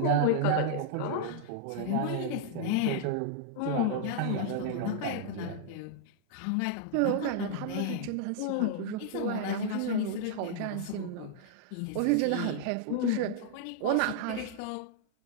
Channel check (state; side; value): different; both; correlation -0.01